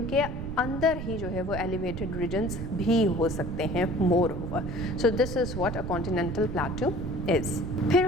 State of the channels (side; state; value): right; noise; rumble, 6 dB below the sound